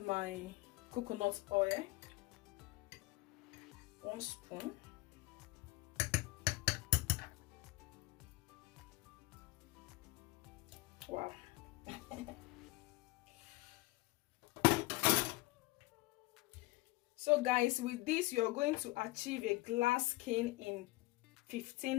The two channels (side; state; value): right; quieter; 21.5 dB